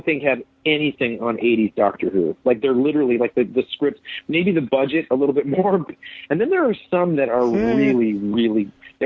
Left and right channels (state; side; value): identical; both; correlation 1.00